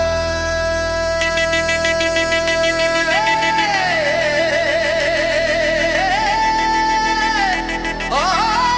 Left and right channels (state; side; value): identical; both; correlation 1.00